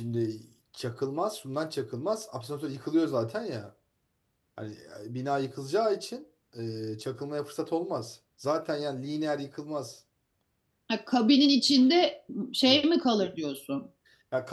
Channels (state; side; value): identical; both; correlation 1.00